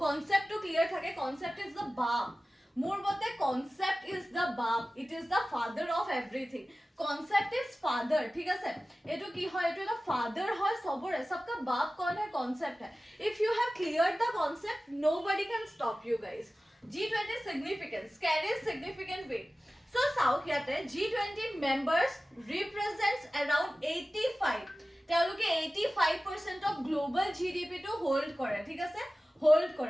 কনসেপ্টটো ক্লিয়াৰ থাকে কনসেপ্ট ইজ দ্য বাম মোৰ মতে concept is the bomb it is the father of everything concept is father ठीक है एटू की হয় এটু এটা father হয় সবরে सबका बाप कौन है concept है if you have cleared the concept nobody can stop you guys G20 significance carries significant weight so south yate G20 members represents around 85 তেওঁলোকে 85% of global GDP to hold কৰে ঠিক আছে hold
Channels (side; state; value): both; normal; correlation 0.96